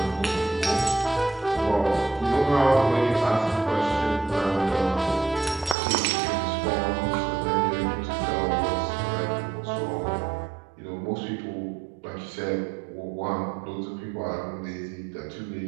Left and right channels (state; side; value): drops out; left; at 5.8 s